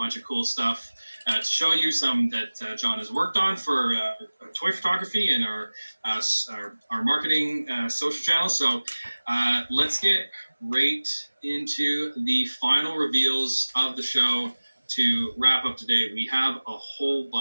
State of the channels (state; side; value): inverted; both; correlation -1.00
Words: of cool stuff to show you. Some that John has worked on for toy photography and our marketing social channels. So let's get right into the final reveals of the show to wrap up today. We have a whole